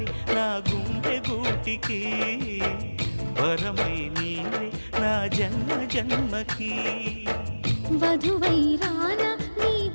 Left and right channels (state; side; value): inverted; both; correlation -1.00